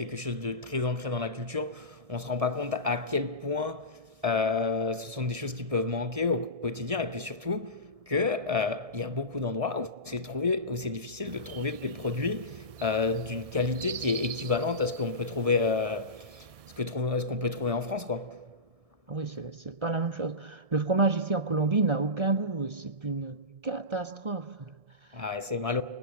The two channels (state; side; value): late; left; 1.6 ms